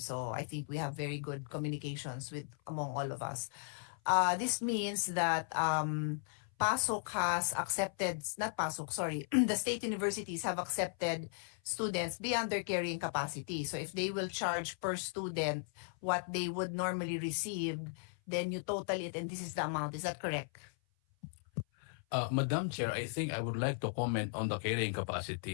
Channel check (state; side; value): silent; right; 53 dB below the other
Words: So I think we have very good communications with among all of us. This means that Pasok has accepted, not Pasok, sorry, the state universities have accepted students beyond their carrying capacity. So if they will charge per student what they would normally receive, then you total it and this is the amount. Is that correct? Madam Chair, I think I would like to comment on the carrying